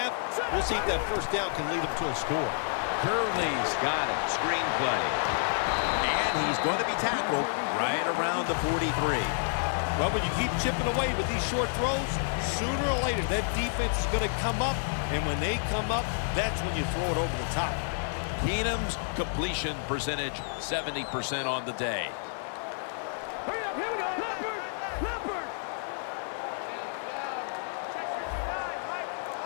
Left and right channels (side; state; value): right; silent; digital silence